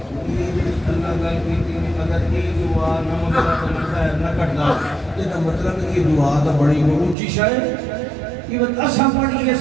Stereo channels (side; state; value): left; drops out; at 7.2 s